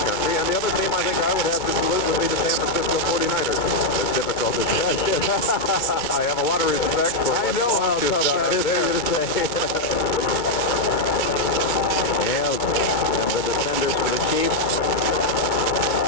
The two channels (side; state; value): right; late; 2.3 ms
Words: and the other team I think I would have to salute would be the San Francisco 49ers. As difficult as that is. I have a lot of respect for I know how tough that is for you to say. Yeah, and the defenders for the Chiefs.